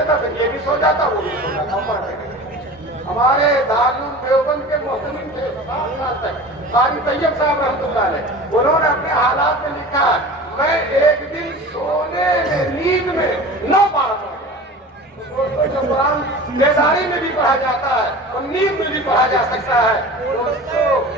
پھر یہ بھی سو جاتا وہ بھی سو جاتا۔ ہمارے دارالعلوم دیوبند کے محتمم تھے 7 سال تک، قاری طیب صاحب رحمۃ اللہ علیہ، انہوں نے اپنے حالات میں لکھا میں ایک دن سونے میں نیند میں 9 بار پڑھا۔ دوستوں جو قرآن بیداری میں بھی پڑھا جاتا ہے اور نیند میں بھی پڑھا جا سکتا ہے، دوستوں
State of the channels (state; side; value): normal; both; correlation 0.37